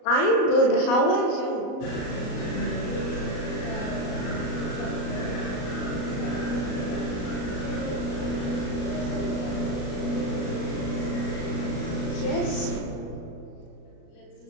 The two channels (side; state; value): right; late; 37 ms